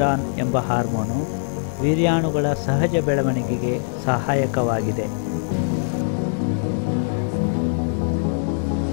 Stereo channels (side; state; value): right; silent; 64 dB below the other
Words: ಎಂಬ ಹಾರ್ಮೋನು ವೀರ್ಯಾಣುಗಳ ಸಹಜ ಬೆಳವಣಿಗೆಗೆ ಸಹಾಯಕವಾಗಿದೆ.